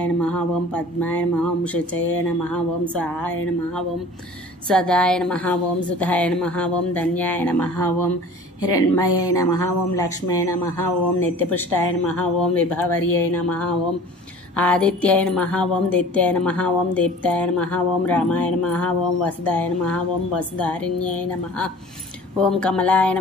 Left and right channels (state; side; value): normal; both; correlation 0.44